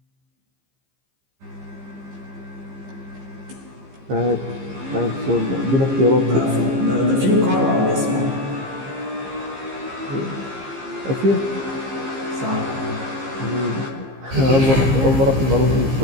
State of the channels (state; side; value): late; left; 15 ms